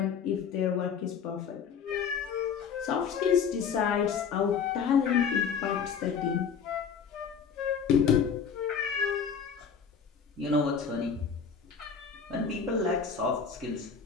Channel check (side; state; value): right; quieter; 6.6 dB